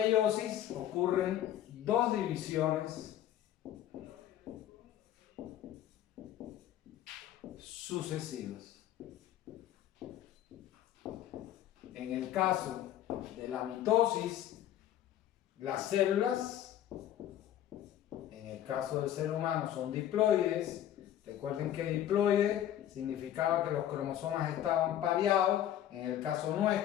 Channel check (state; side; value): quieter; right; 11.7 dB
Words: ocurren 2 divisiones sucesivas. En el caso de la mitosis, las células, en el caso del ser humano, son diploides. Recuerden que diploide significaba que los cromosomas estaban pareados. En el caso